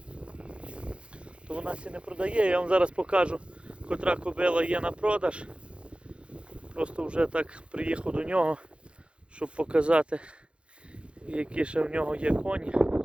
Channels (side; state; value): left; late; 0.058 ms